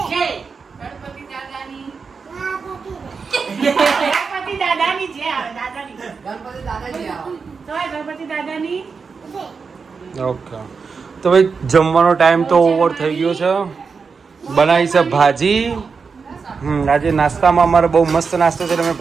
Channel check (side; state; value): left; quieter; 5.2 dB